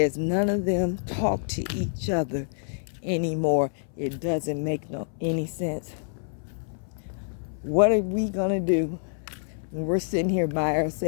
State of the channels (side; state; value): right; silent; 58 dB below the other